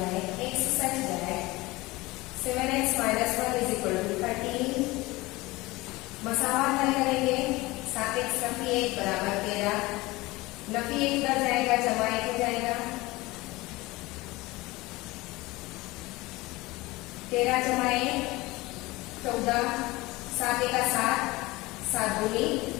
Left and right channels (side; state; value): right; quieter; 21.0 dB